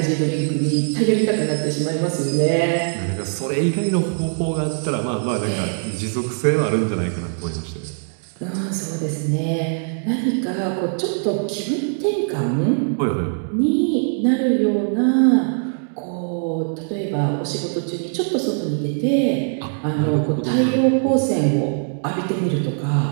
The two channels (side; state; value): left; silent; 64 dB below the other